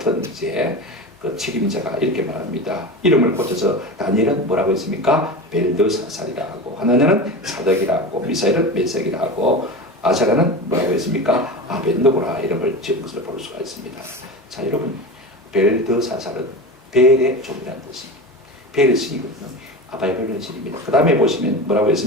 이제 그 책임자가 이렇게 말합니다. 이름을 고쳐서 다니엘은 뭐라고 했습니까? 벨드사살이라 하고, 하나냐는 사덕이라 하고, 미사엘은 메색이라 하고, 아사랴는 뭐라고 했습니까? 아벤노고라 이름을 지은 것을 볼 수가 있습니다. 자, 여러분, 벨드사살은 벨의 종이라는 뜻입니다. 벨의 신이거든요. 아바이벨의 신입니다. 그 다음에 보시면 뭐라고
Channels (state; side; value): normal; both; correlation 0.27